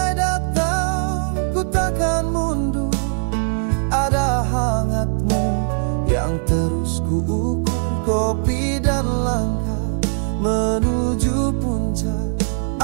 datang, ku takkan mundur, ada hangatmu yang terus ku ukur. Kopi dan langkah menuju puncak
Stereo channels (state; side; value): silent; left; digital silence